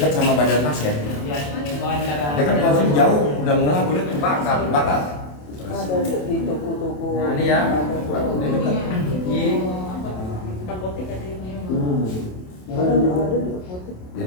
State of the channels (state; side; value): late; right; 27 ms